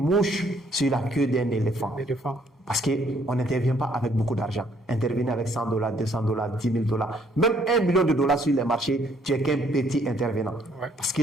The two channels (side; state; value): both; normal; correlation 0.66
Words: sur la queue d'un éléphant. Parce qu'on n'intervient pas avec beaucoup d'argent. Intervenir avec $100, $200, $10,000, même $1 million sur les marchés, tu es qu'un petit intervenant. Ouais. Parce que